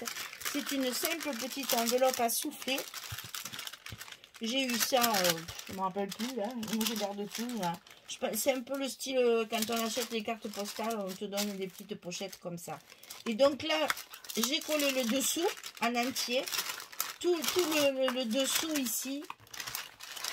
C'est une simple petite enveloppe à souffler. J'ai eu ça, je ne me rappelle plus, là. Moi, je garde tout, là. C'est un peu le style, quand on achète les cartes postales, on te donne des petites pochettes comme ça. Et donc là, j'ai collé le dessous en entier. Tout le dessous ici.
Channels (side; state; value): both; identical; correlation 1.00